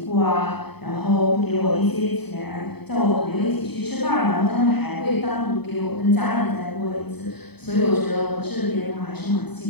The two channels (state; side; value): late; right; 0.98 ms